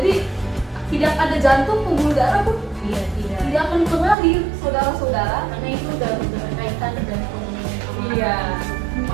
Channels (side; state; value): left; drops out; at 4.2 s